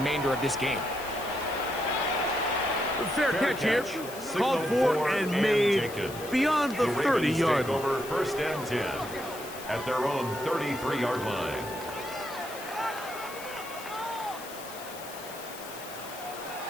of this game. Fair catch here. Called for and made beyond the 30-yard line. Over first and 10 at their own 33-yard line.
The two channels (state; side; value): noise; left; hiss, 14 dB below the sound